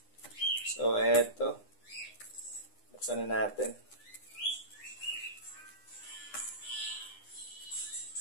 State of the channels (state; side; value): late; right; 9.8 ms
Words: So, eto. Buksan na natin.